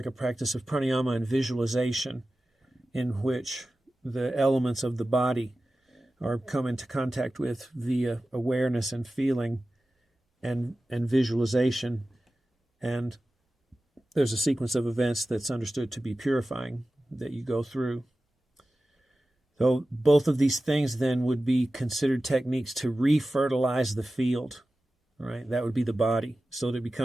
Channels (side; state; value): both; normal; correlation 0.95